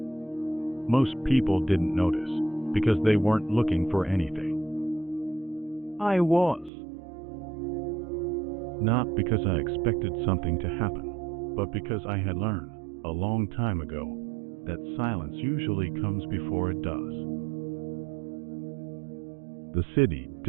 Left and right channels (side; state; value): left; drops out; at 6.7 s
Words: Most people didn't notice because they weren't looking for anything. I was. Not because I expected something to happen, but because I had learned a long time ago that silence usually comes before it does. The city